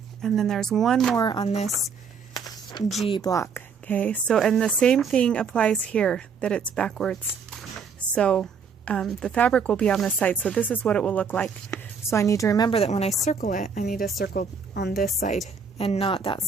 And then there's one more on this G block. Okay, so and the same thing applies here, that it's backwards. So the fabric will be on this side, so this is what it will look like. So I need to remember that when I circle it, I need to circle on this side and not that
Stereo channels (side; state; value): left; quieter; 5.9 dB